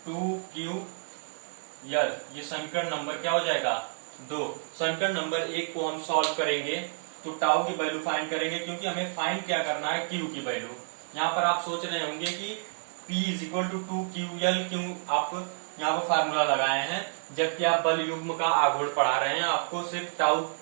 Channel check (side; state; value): left; silent; digital silence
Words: 2QL। ये समीकरण नंबर क्या हो जाएगा, 2। समीकरण नंबर 1 को हम सॉल्व करेंगे तो टाउ की वैल्यू फाइंड करेंगे, क्योंकि हमें फाइंड क्या करना है, Q की वैल्यू। यहाँ पर आप सोच रहे होंगे कि P is equal to 2QL क्यों आप यहाँ पर फार्मूला लगाए हैं, जबकि आप बल युग्म का आघूर्ण पढ़ा रहे हैं, आपको सिर्फ टाउ